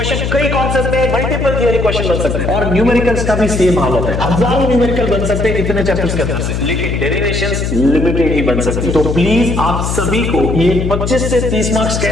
कई कॉन्सेप्ट में मल्टीपल थियरी क्वेश्चन बन सकते हैं। और न्यूमेरिकल्स का भी सेम हालत है, हजारों न्यूमेरिकल बन सकते हैं इतने चैप्टर्स के अंदर से, लेकिन डेरिवेशंस लिमिटेड ही बन सकती है। तो प्लीज आप सभी को ये 25 से 30 मार्क्स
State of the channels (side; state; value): left; noise; hum, 2 dB below the sound